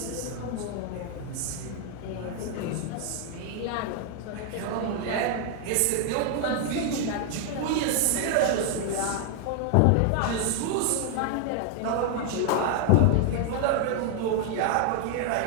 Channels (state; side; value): different; both; correlation 0.00